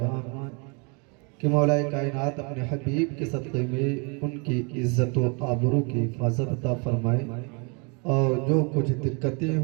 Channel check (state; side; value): quieter; left; 33.2 dB